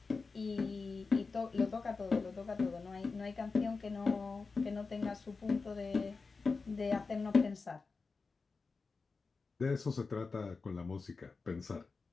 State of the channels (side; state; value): right; quieter; 4.3 dB